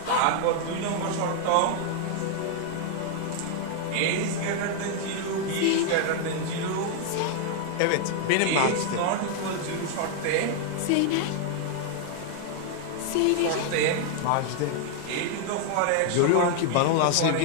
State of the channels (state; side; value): different; both; correlation 0.00